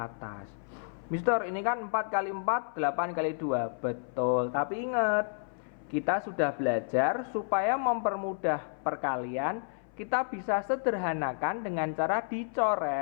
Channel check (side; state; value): right; silent; 57 dB below the other